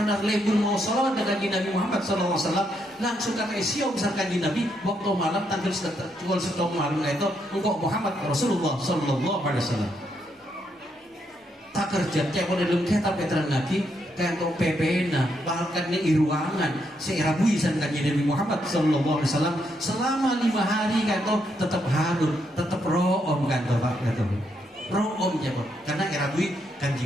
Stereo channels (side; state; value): both; normal; correlation 0.78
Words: lebur mau salawat dengan Nabi Muhammad sallallahu alaihi wasallam langsung kata siom misalkan di Nabi waktu malam tanggal setengah malam itu engkau Muhammad Rasulullah sallallahu alaihi wasallam tak kerja kayak pada dalam kitab Petrang lagi kayak untuk PPN bahkan di ruangan seirabui sankan Nabi Muhammad sallallahu alaihi wasallam selama 5 hari kan itu tetap hadur tetap room kan tuh Pak kata room ya Pak karena irabui